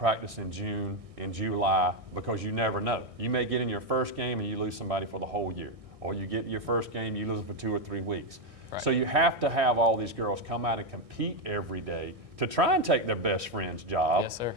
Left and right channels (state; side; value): late; left; 1.6 ms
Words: in June and July, because you never know. You may get in your first game and you lose somebody for the whole year, or you get your first game, you lose them for 2 or 3 weeks. Right. So you have to have all these girls come out and compete every day to try and take their best friend's job. Yes, sir.